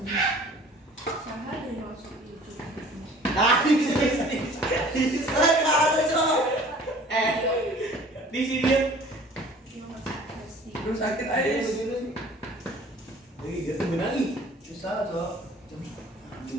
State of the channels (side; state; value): both; normal; correlation 0.49